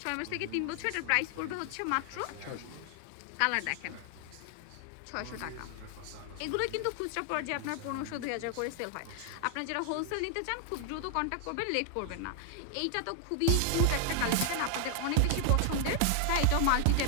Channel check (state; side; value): different; both; correlation 0.00